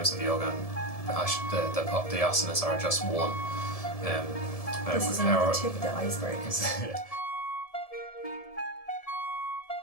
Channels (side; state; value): right; late; 1.7 ms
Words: of yoga, and the asanas are just one. This is only the tip of the iceberg.